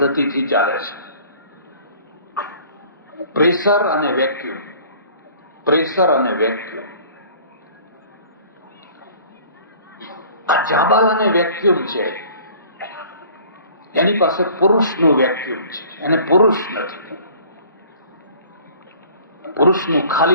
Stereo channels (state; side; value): inverted; both; correlation -0.50